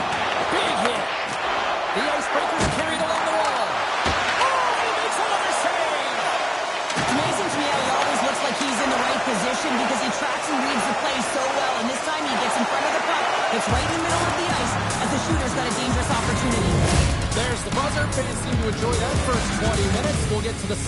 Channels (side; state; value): both; identical; correlation 1.00